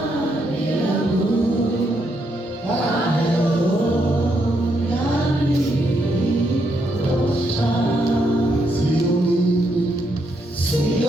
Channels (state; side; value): normal; both; correlation 0.78